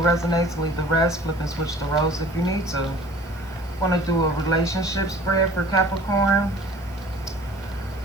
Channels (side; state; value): right; noise; hiss, 26 dB below the sound